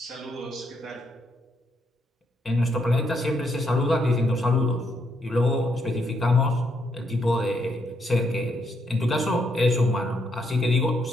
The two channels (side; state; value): both; normal; correlation 0.76